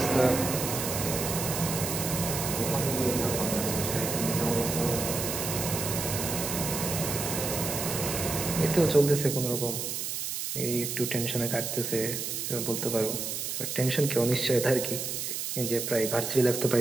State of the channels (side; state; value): right; noise; hiss, 3 dB below the sound